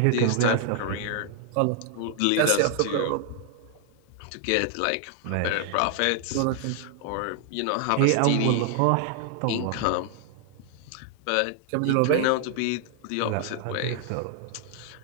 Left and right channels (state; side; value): different; both; correlation 0.00